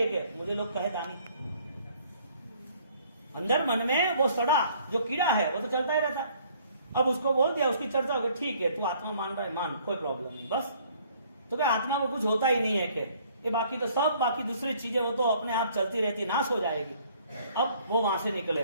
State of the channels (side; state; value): both; inverted; correlation -0.59